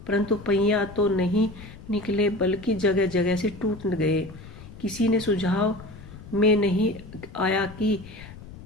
परंतु पहिया तो नहीं निकले बल्कि जगह जगह से टूट गए। किसी ने सुझाव में नहीं आया कि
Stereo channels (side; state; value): left; noise; rumble, 16 dB below the sound